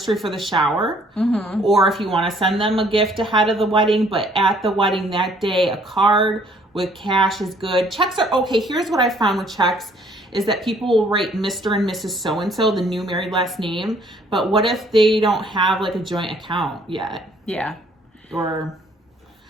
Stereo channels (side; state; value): both; normal; correlation 0.61